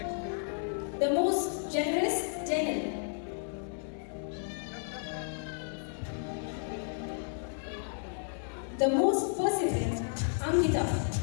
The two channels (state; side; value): silent; right; digital silence